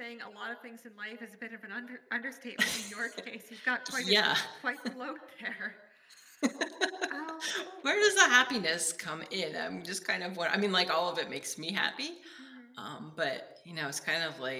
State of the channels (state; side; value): identical; both; correlation 1.00